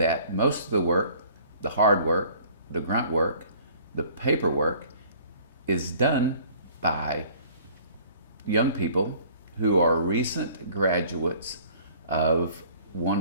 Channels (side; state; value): both; inverted; correlation -0.54